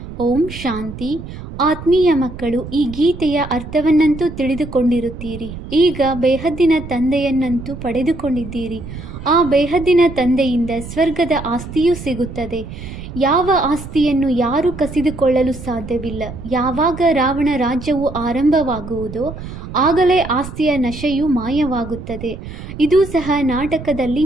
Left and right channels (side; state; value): right; noise; rumble, 11 dB below the sound